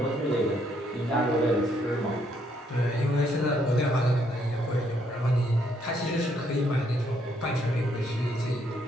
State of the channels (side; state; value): both; normal; correlation 0.71